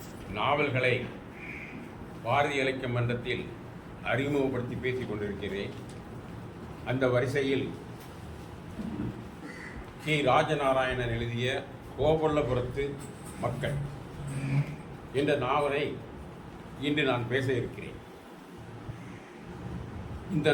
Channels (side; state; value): both; identical; correlation 1.00